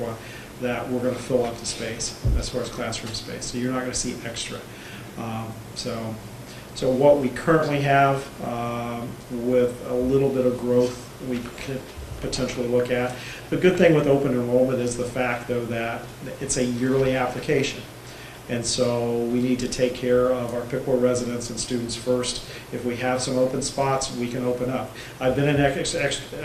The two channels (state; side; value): identical; both; correlation 1.00